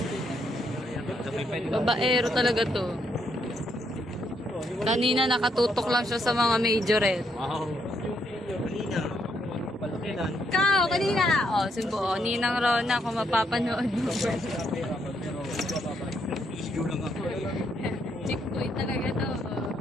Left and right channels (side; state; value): both; normal; correlation 0.75